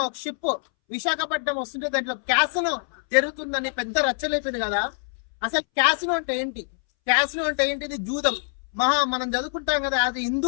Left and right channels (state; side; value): silent; right; 62 dB below the other